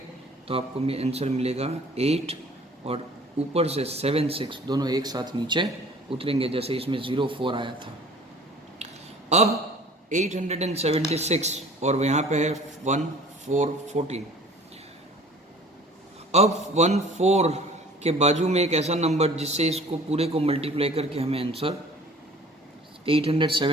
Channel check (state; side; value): normal; both; correlation 0.49